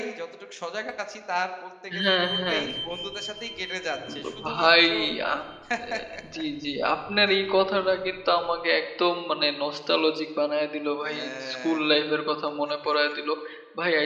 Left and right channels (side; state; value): both; identical; correlation 1.00